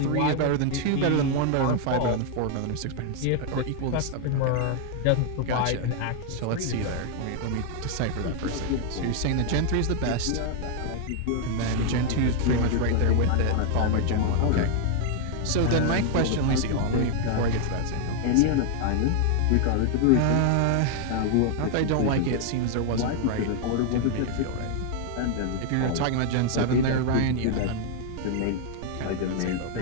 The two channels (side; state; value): both; different; correlation 0.00